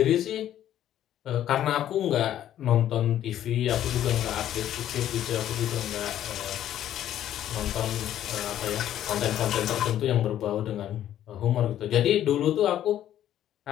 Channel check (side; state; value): right; quieter; 11.6 dB